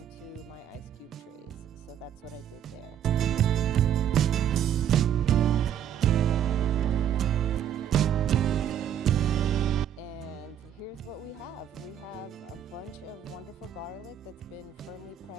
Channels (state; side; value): quieter; left; 9.6 dB